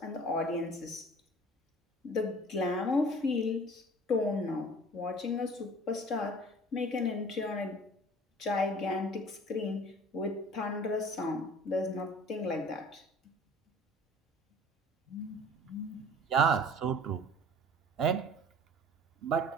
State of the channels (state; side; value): normal; both; correlation 0.47